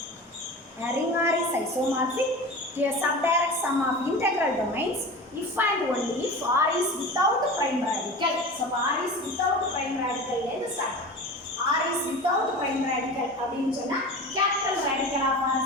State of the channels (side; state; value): both; normal; correlation 0.32